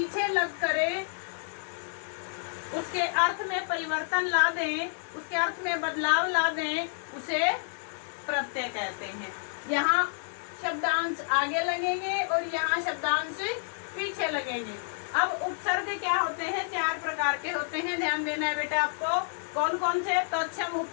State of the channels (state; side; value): silent; right; 58 dB below the other